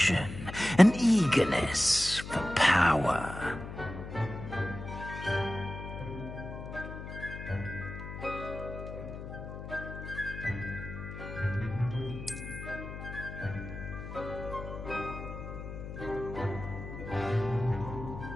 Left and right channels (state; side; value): noise; left; hum, 9 dB below the sound